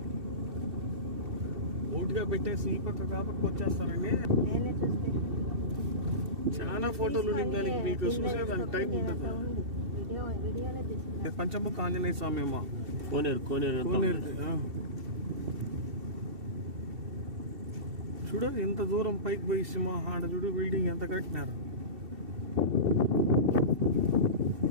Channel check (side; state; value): left; late; 2.7 ms